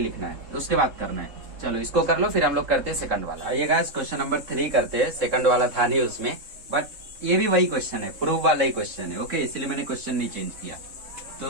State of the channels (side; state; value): left; late; 3.7 ms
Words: है, उसके बाद करना है। चलो इसको कर लो, फिर हम लोग करते हैं सेकंड वाला। आइए गाइस, क्वेश्चन नंबर 3 करते हैं। सेकंड वाला था नहीं उसमें, बट ये भी वही क्वेश्चन है, प्रूफ वाला ही क्वेश्चन है। ओके, इसलिए मैंने क्वेश्चन नहीं चेंज किया।